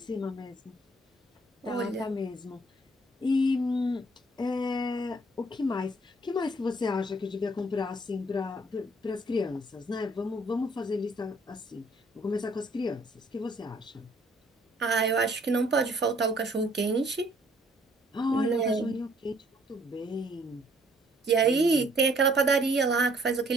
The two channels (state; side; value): normal; both; correlation 0.62